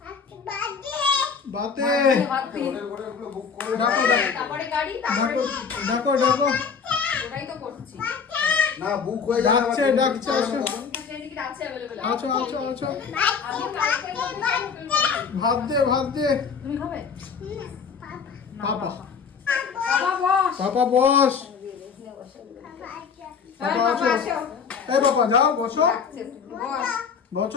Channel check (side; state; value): right; quieter; 6.1 dB